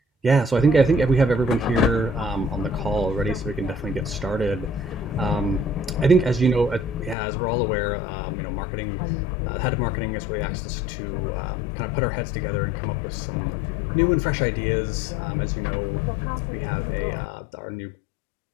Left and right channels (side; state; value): right; drops out; at 7.2 s